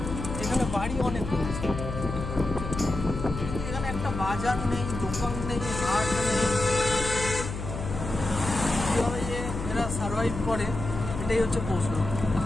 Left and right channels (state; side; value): noise; left; hum, 6 dB below the sound